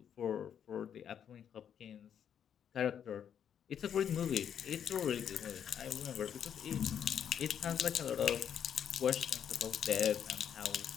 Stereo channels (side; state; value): right; quieter; 8.7 dB